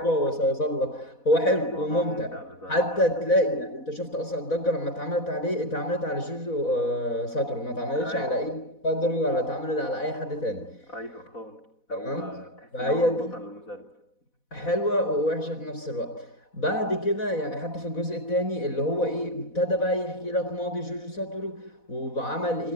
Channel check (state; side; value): late; right; 4.1 ms